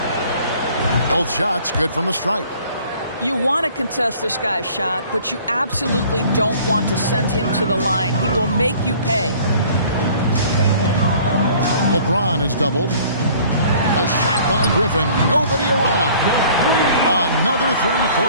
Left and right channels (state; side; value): inverted; both; correlation -0.53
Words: Both shots good from the stripe. You want to contest this guy's shot, but you absolutely don't want to send him to the line. He will make you pay. LeBron is doubled. A shot by Griffin. Nobody around. Another 3